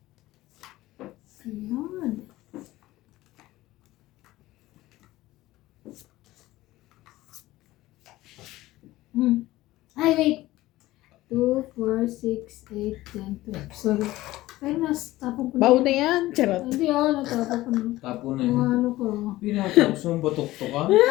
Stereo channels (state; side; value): quieter; right; 17.1 dB